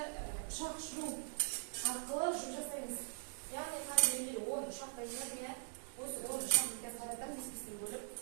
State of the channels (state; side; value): silent; left; digital silence